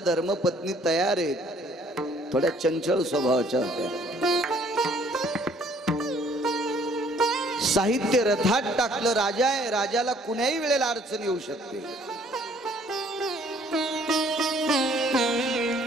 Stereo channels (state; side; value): normal; both; correlation 0.60